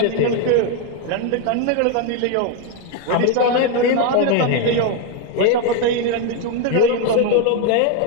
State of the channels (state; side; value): different; both; correlation 0.02